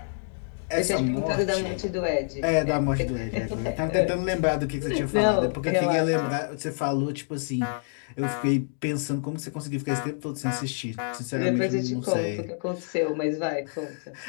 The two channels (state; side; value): silent; right; digital silence